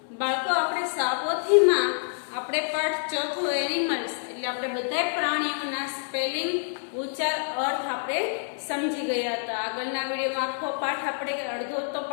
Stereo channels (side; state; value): right; silent; 60 dB below the other